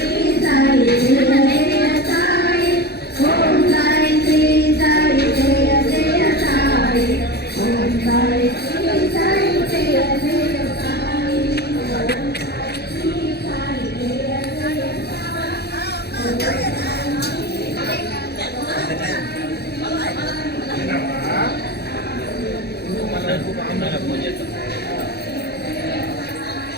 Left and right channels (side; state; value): right; late; 0.48 ms